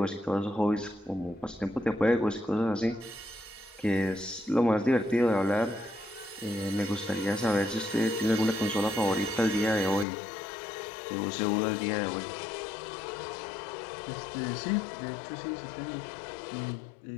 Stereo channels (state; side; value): drops out; right; at 10.1 s